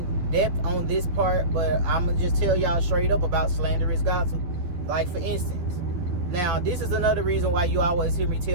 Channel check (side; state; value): left; late; 11 ms